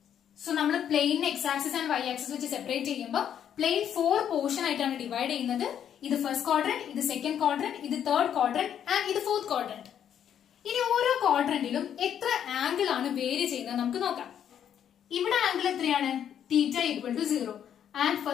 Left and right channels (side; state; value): right; quieter; 9.3 dB